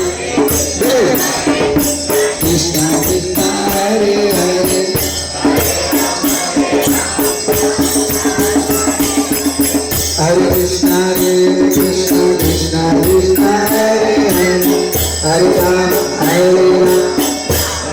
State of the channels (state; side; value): identical; both; correlation 1.00